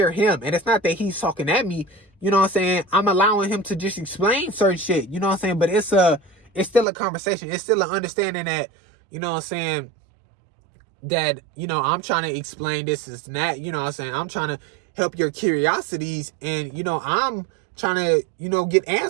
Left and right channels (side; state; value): left; drops out; at 6.9 s